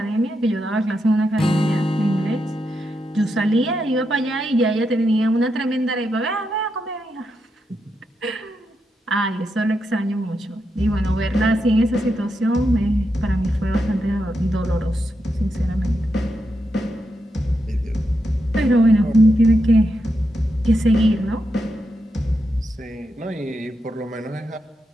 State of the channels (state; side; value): normal; both; correlation 0.84